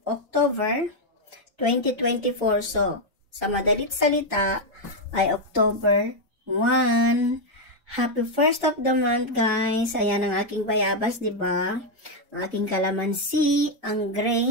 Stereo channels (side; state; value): both; normal; correlation 0.02